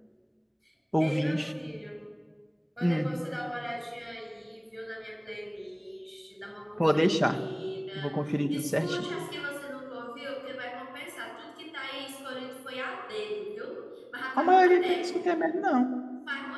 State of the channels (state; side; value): identical; both; correlation 1.00